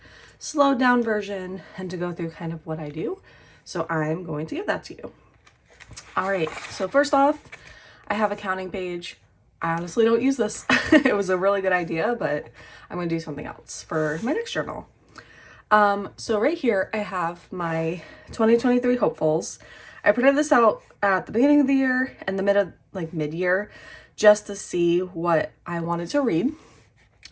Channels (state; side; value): identical; both; correlation 1.00